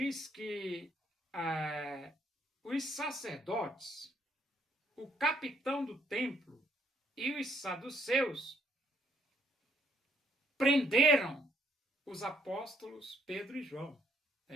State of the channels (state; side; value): normal; both; correlation 0.69